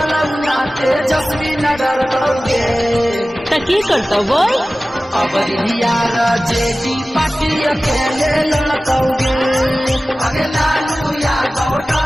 ना तेजस्वी न डरलौगे त की करता बोल अब यार जेडी पार्टी अकेले लड़कौगे अगे लालू यादव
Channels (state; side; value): normal; both; correlation 0.96